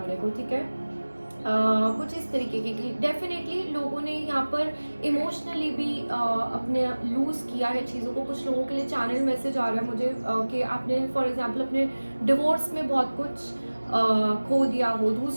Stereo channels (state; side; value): inverted; both; correlation -1.00